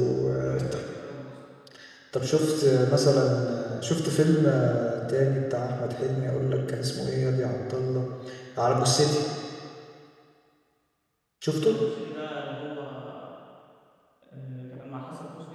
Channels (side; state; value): both; identical; correlation 1.00